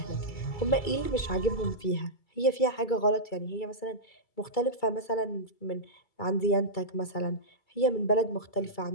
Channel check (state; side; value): late; right; 2.3 ms